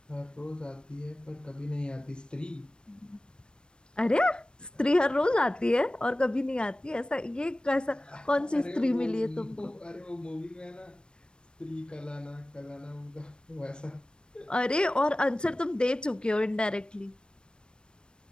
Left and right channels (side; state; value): right; late; 0.053 ms